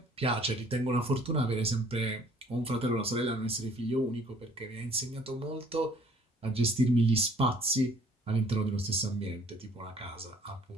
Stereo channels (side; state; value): both; normal; correlation 0.57